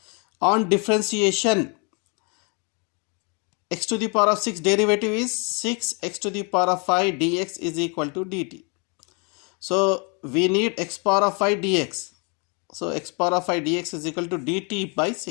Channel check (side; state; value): right; quieter; 33.8 dB